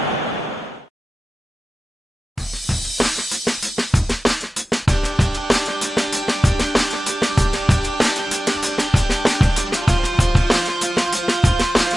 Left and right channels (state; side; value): normal; both; correlation 0.94